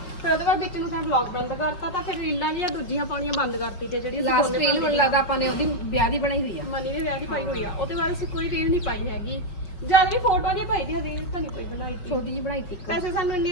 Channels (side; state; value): right; late; 5.6 ms